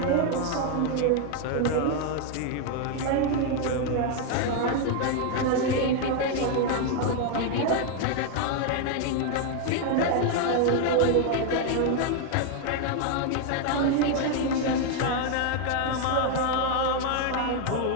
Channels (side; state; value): both; different; correlation 0.00